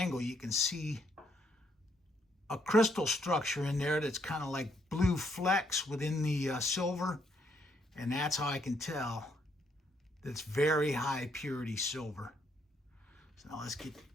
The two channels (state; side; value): normal; both; correlation 0.72